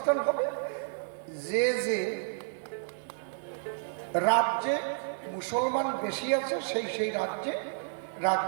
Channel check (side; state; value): left; silent; 57 dB below the other